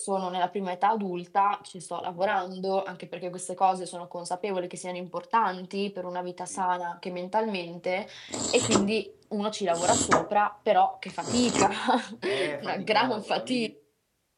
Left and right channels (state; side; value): identical; both; correlation 1.00